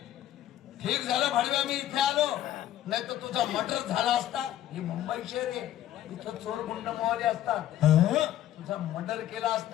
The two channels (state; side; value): quieter; right; 12.5 dB